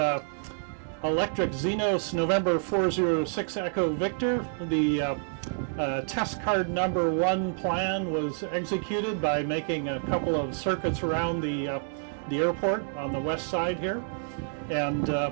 electric Xenos November 406 Echo Victor. The test card number 1 plan was executed by making a couple of circuits around the airport on the west side here. And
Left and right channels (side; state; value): left; silent; 59 dB below the other